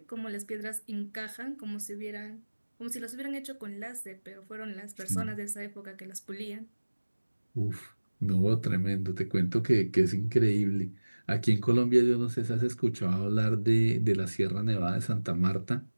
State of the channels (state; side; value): inverted; both; correlation -1.00